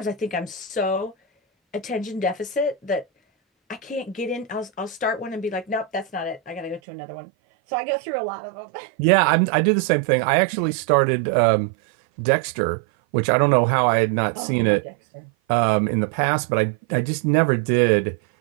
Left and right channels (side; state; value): left; drops out; at 6.8 s